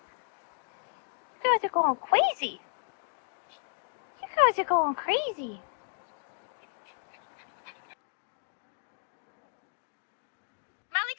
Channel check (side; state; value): right; silent; digital silence